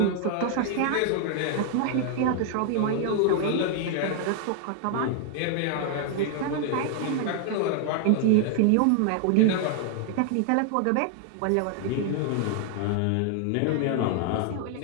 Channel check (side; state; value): both; different; correlation 0.00